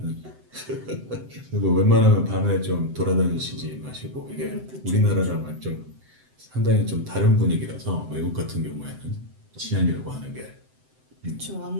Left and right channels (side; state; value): left; late; 7.8 ms